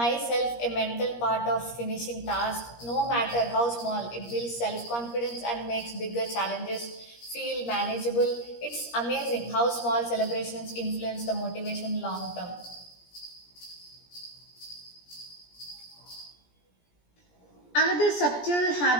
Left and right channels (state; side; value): late; right; 17 ms